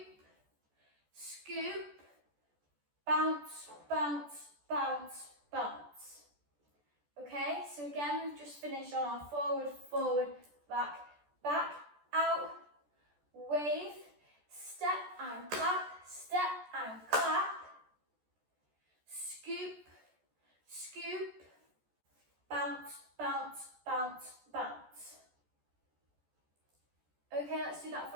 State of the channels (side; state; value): left; late; 14 ms